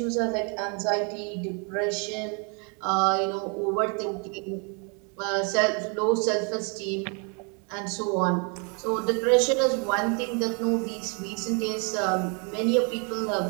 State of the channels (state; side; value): quieter; left; 36.1 dB